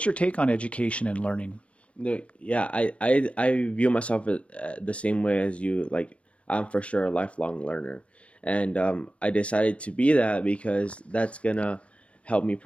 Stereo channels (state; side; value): late; right; 0.062 ms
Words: your take on education and learning? Yeah, I view myself the same way as you. Like, I'm for sure a lifelong learner. And I decided to be that because that's gonna help me